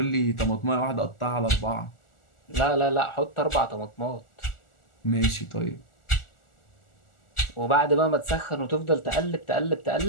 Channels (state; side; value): late; right; 1.4 ms